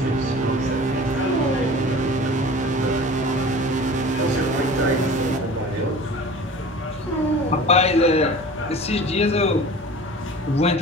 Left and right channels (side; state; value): both; normal; correlation 0.40